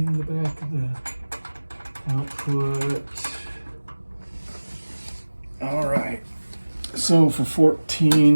the back of the output. All right. So for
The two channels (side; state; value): both; inverted; correlation -1.00